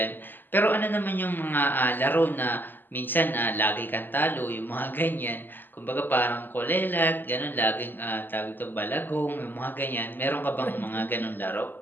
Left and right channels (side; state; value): right; late; 0.092 ms